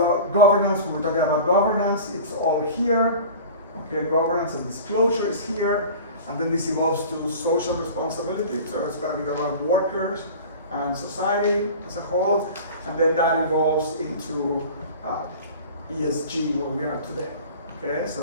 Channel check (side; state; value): both; inverted; correlation -0.38